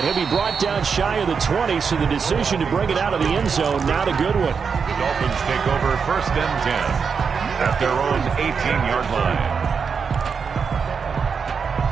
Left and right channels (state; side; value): quieter; left; 5.9 dB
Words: he'll be brought down shy of the 20, so the decision to bring it out of the end zone, not a good one. The Dolphins take over 1st and 10 at their own 18-yard line.